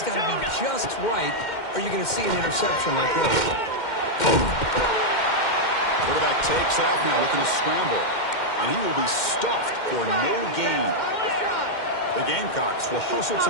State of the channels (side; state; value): right; late; 2.1 ms